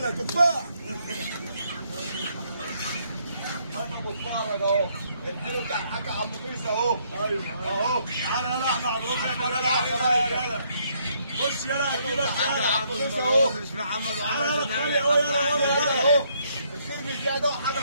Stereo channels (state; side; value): inverted; both; correlation -0.70